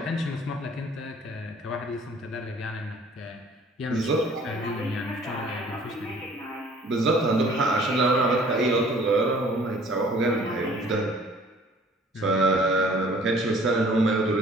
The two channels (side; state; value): both; normal; correlation 0.53